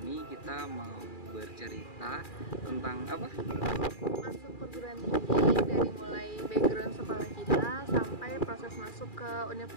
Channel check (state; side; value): late; right; 2.4 ms